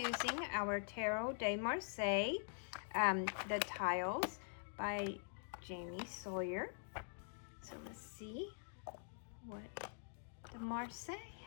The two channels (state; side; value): silent; right; digital silence